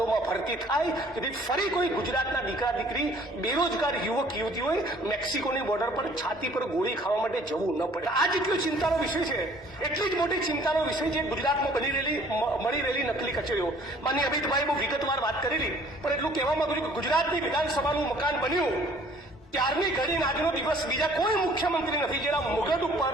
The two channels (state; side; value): normal; both; correlation 0.55